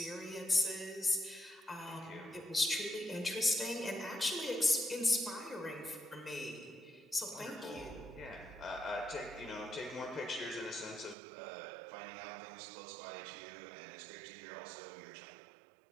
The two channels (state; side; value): drops out; left; at 11.2 s